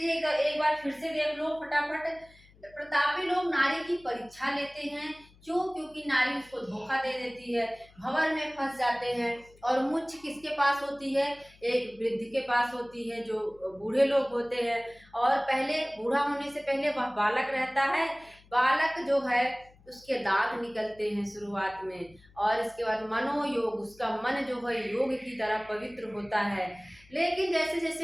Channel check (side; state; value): left; noise; hum, 27 dB below the sound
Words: एक बार फिर से देख लो फटाफट। प्रतापी लोग नारी की परीक्षा लेते हैं। क्यों? क्योंकि नारी उसको धोखा दे देती है, भंवर में फंस जाते हैं। और मुच्छ किसके पास होती है? एक वृद्ध के पास होती है, जो बूढ़े लोग होते हैं। और पहले, बूढ़ा होने से पहले वह बालक रहता है। बालक जो है उसके दांत निकलते हैं शुरुआत में। और इसके बाद मनोयोग, उसका मन जो है योग की तरह पवित्र होता है। लेकिन जैसे